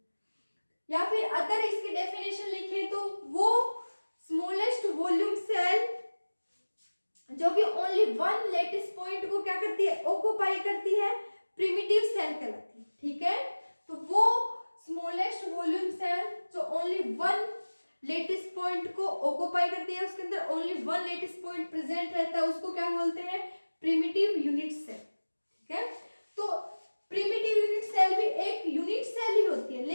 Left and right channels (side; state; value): both; inverted; correlation -1.00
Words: या फिर अदर इसकी डेफिनेशन लिखें तो वो स्मॉलेस्ट वॉल्यूम सेल जो कि ओनली 1 लेटिस पॉइंट को क्या करती है ऑक्युपाई करती है प्रिमिटिव सेल कहलाती है। ठीक है, तो वो स्मॉलेस्ट वॉल्यूम सेल जो ओनली 1 लेटिस पॉइंट को ऑक्युपाई करती है, उसके अंदर ओनली 1 लेटिस पॉइंट प्रेजेंट रहता है, उसको क्या बोलते हैं प्रिमिटिव यूनिट सेल। ठीक है, तो प्रिमिटिव यूनिट सेल भी एक यूनिट सेल ही होती है